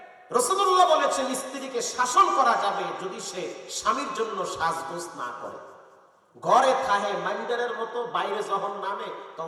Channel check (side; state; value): both; identical; correlation 1.00